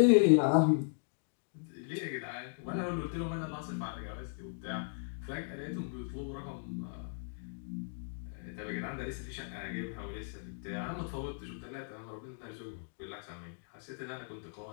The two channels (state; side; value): silent; right; digital silence